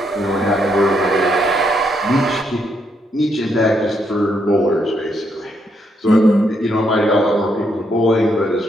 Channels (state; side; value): normal; both; correlation 0.76